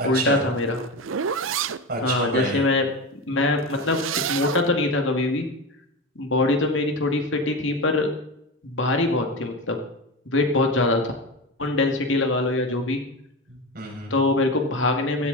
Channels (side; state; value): both; normal; correlation 0.22